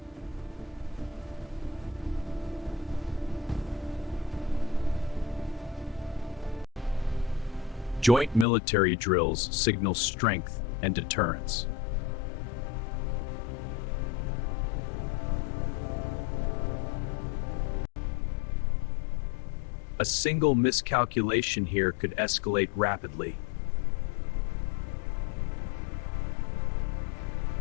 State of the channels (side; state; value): right; drops out; at 8.5 s